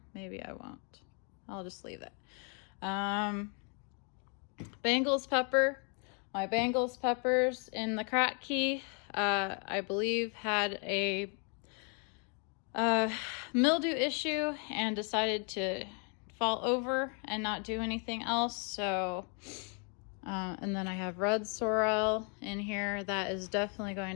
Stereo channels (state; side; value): quieter; right; 39.2 dB